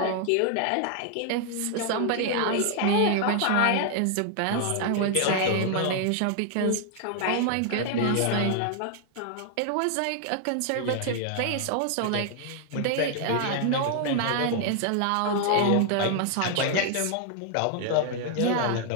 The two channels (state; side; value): different; both; correlation 0.00